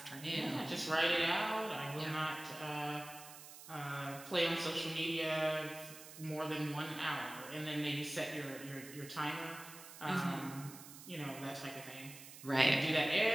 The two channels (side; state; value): right; noise; hiss, 15 dB below the sound